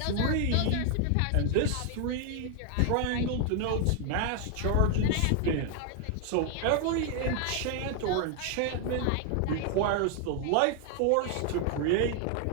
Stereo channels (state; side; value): different; both; correlation 0.00